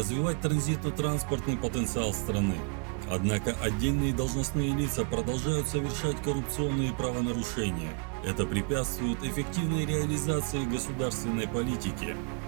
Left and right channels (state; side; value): quieter; left; 36.6 dB